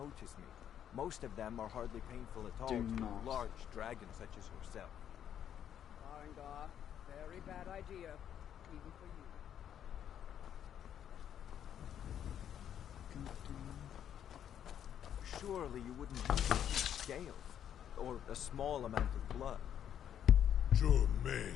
me. Most of them are hardly painful at all Do to not. large dragons such as yourself. Farengar, very bad idea, even for you. Surely you wouldn't use scales, or a small amount of blood. Jumei,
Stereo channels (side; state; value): right; quieter; 9.6 dB